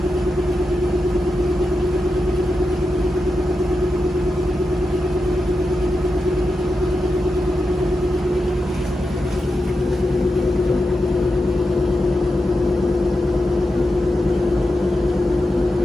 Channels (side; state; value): both; normal; correlation 0.89